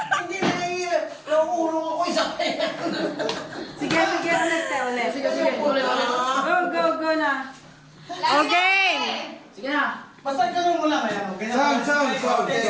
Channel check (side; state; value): both; identical; correlation 1.00